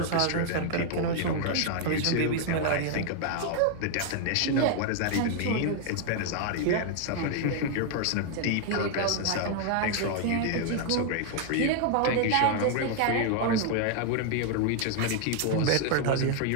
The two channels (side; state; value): both; different; correlation 0.00